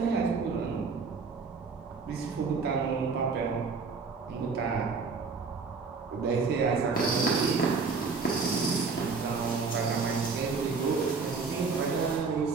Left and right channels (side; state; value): left; quieter; 4.8 dB